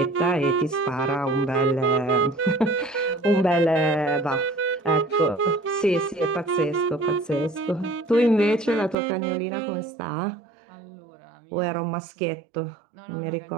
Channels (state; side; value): drops out; left; at 9.0 s